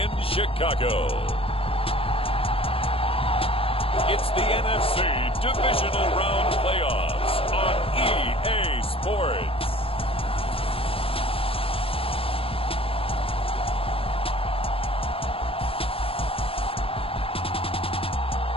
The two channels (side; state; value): right; late; 0.27 ms